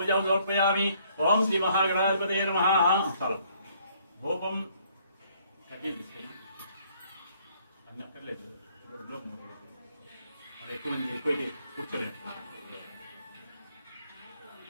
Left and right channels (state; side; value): inverted; both; correlation -0.64